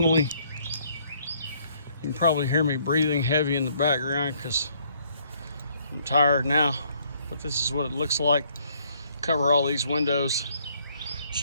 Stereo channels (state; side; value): inverted; both; correlation -0.66